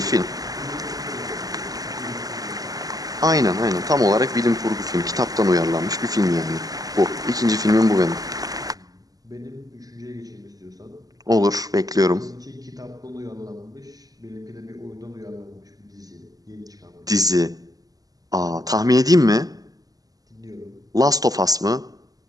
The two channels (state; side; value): late; left; 0.18 ms